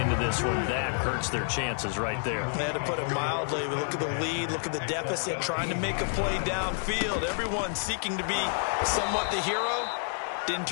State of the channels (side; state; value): right; silent; 58 dB below the other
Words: this one, that hurts their chances right there. They had to put it mildly. Look at the lead, look at the deficit, trying to make a play downfield. Everyone seeking to be somewhat the hero. Didn't